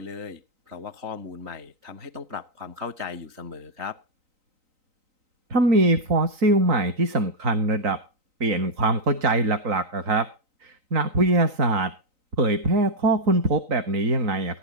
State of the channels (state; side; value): late; left; 3.9 ms